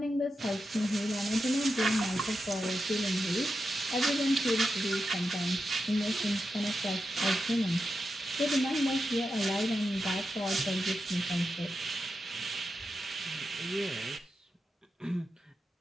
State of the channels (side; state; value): both; normal; correlation 0.88